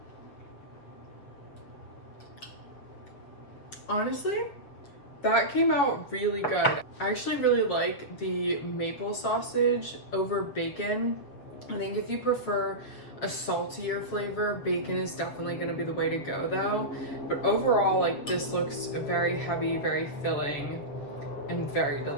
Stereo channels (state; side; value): late; right; 7.3 ms